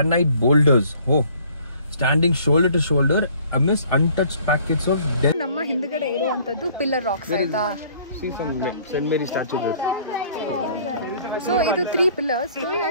boulders, standing shoulder to shoulder amidst untouched packets of dead. ನಮ್ಮ ಹಿಂದ್ಗಡೆ ಇರುವಂತದ್ದು ಪಿಲ್ಲರ್ ರಾಕ್ಸ್ ಆಯ್ತಾ? See some St. Mary statue there. So ಇದು 3 pillars.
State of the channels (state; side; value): inverted; both; correlation -0.57